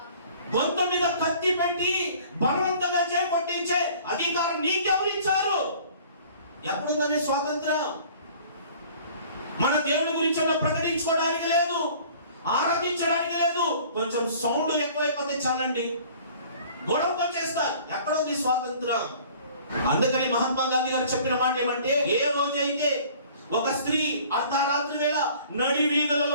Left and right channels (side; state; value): both; inverted; correlation -0.50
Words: గొంతు మీద కత్తి పెట్టి బలవంతంగా చేపట్టించే అధికారం నీకెవరు ఇచ్చారు? ఎప్పుడుందని స్వాతంత్రం? మన దేవుడి గురించి ప్రకటించుకోవడానికి లేదు, ఆరాధించడానికి లేదు. కొంచెం సౌండ్ ఎక్కువైపోతే చాలండి గొడవతో చేస్తారు. ఎక్కడుంది స్వాతంత్రం? అందుకని మహాత్మా గాంధీ గారు చెప్పిన మాట ఏమంటే, ఏ రోజైతే ఒక స్త్రీ అర్ధరాత్రి వేళ నడి